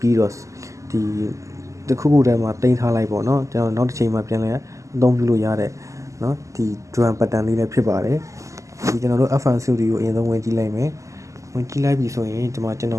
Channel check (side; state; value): left; late; 0.16 ms